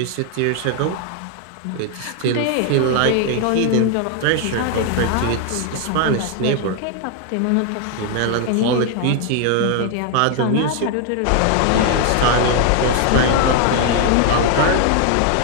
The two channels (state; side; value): different; both; correlation 0.00